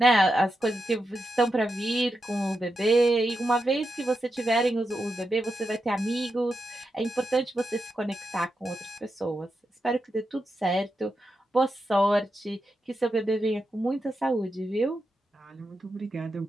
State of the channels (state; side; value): normal; both; correlation 0.87